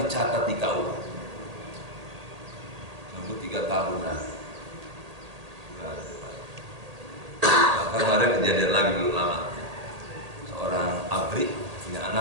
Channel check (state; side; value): late; left; 1.8 ms